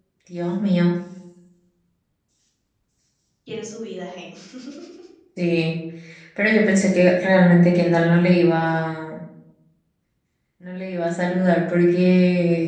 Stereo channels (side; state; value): both; identical; correlation 1.00